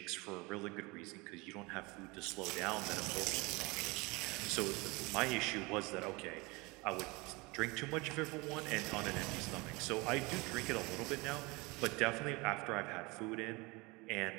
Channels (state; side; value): quieter; left; 25.4 dB